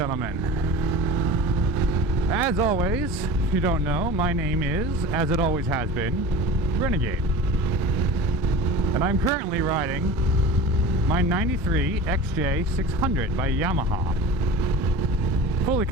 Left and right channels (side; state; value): both; normal; correlation 0.35